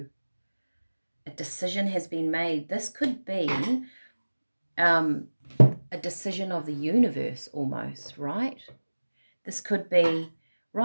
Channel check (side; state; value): both; inverted; correlation -1.00